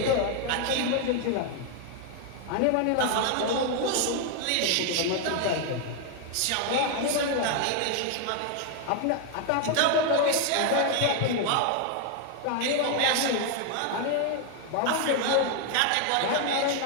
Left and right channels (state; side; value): different; both; correlation 0.01